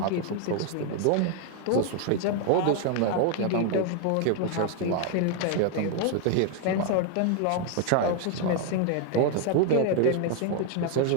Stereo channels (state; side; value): different; both; correlation 0.00